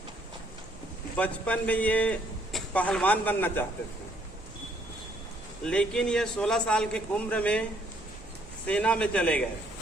बचपन में ये पहलवान बनना चाहते थे, लेकिन ये 16 साल की उम्र में सेना में चले गए,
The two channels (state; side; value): normal; both; correlation 0.66